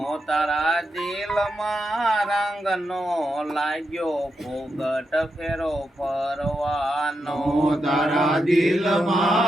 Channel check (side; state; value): both; normal; correlation 0.85